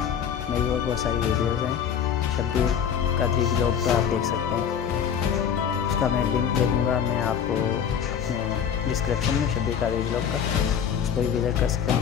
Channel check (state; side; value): quieter; right; 8.1 dB